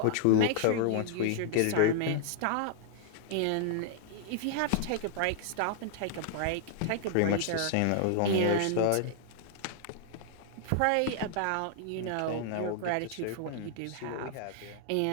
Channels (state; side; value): different; both; correlation -0.01